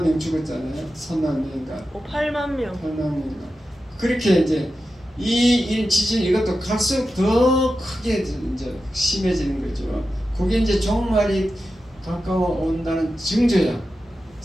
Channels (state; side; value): normal; both; correlation 0.91